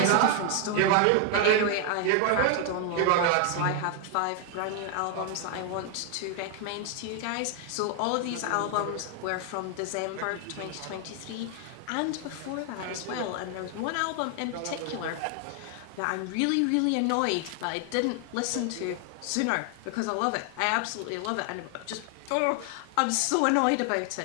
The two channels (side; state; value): both; different; correlation 0.00